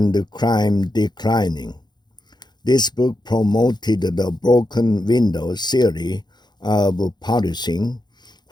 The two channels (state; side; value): late; right; 0.21 ms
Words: crime declining, this book promoted the broken window theory of policing,